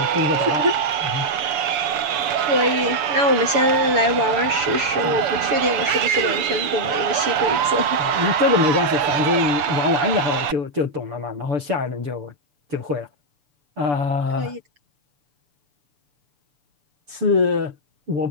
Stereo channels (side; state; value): left; late; 7.0 ms